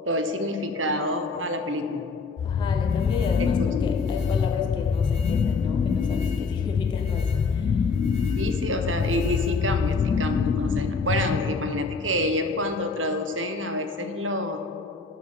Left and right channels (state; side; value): quieter; right; 4.1 dB